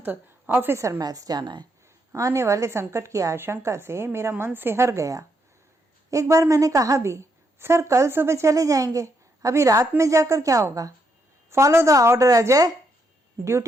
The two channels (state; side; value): normal; both; correlation 0.77